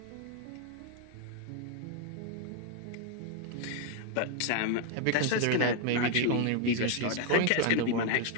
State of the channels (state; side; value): different; both; correlation 0.01